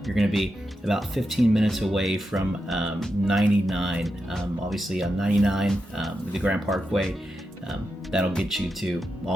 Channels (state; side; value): normal; both; correlation 0.88